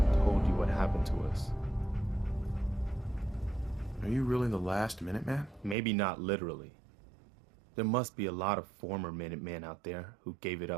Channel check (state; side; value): drops out; left; at 5.8 s